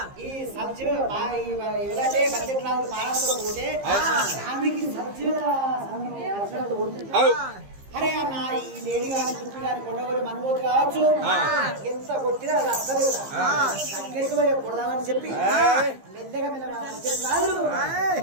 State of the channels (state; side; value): late; left; 15 ms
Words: ఈ సబ్జీ ఎవరైతే బడ్జెట్ రాదు పాలనతో పోతే ఆమెకి సబ్జీల అరే అన్న ఈ లేడీ గారి చుట్టూ గారి కొండగోలు మనబోతు కావచ్చు ఎంత కొట్టినా అది అసలు దగ్గరికి పోయి కొడదామని చెప్పి మెల్లగా